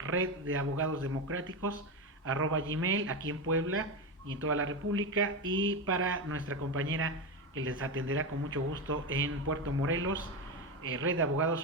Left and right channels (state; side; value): normal; both; correlation 0.15